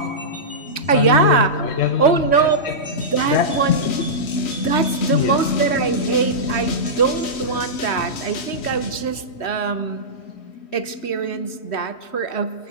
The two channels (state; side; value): late; right; 3.1 ms